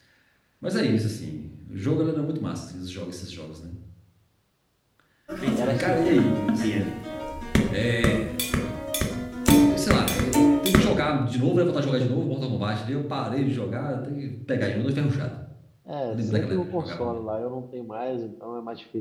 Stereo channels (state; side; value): identical; both; correlation 1.00